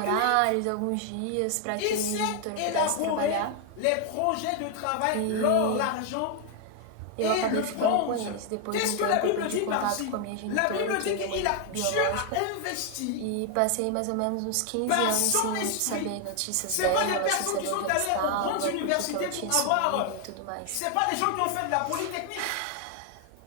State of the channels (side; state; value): both; different; correlation 0.00